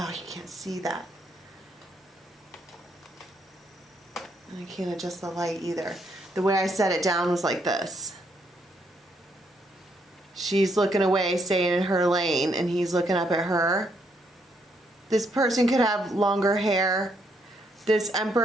you can't see that. I can't adjust the light either. The way I set it down was like this. She's looking away, staying in her lane, and he's looking up at her. This person could have longer hair. This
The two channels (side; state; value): both; normal; correlation 0.74